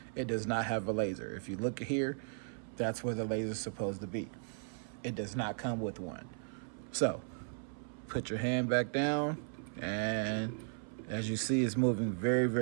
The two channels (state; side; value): silent; left; 54 dB below the other